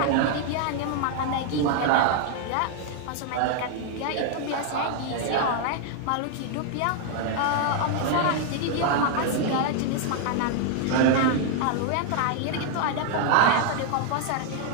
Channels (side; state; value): both; different; correlation 0.00